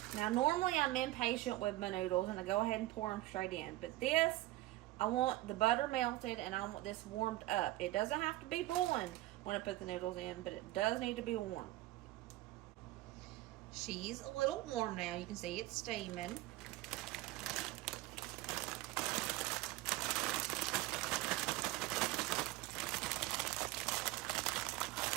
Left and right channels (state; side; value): quieter; left; 17.4 dB